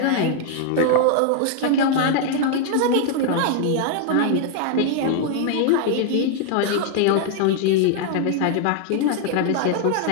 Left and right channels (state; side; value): different; both; correlation 0.00